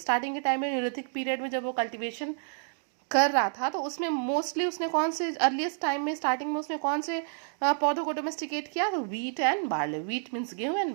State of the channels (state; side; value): silent; left; digital silence